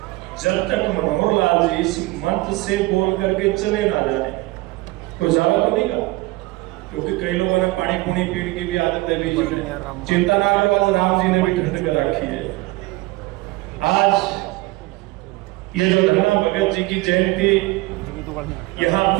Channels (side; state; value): left; quieter; 21.3 dB